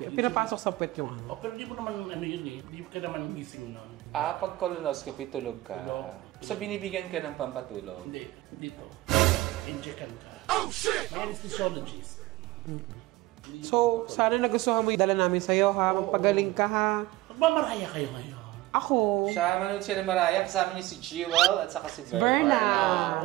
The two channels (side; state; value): left; quieter; 17.8 dB